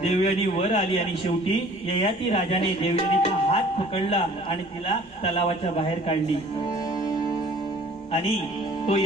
देवयानी वर आली आणि शेवटी ययाती राजाने देवयानीचा हात पकडला आणि तिला तलावाच्या बाहेर काढली. आणि तो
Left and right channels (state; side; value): normal; both; correlation 0.51